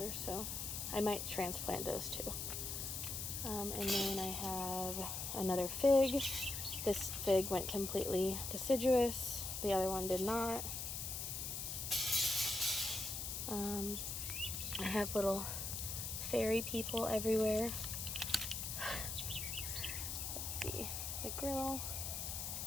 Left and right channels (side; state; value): left; noise; hiss, 4 dB below the sound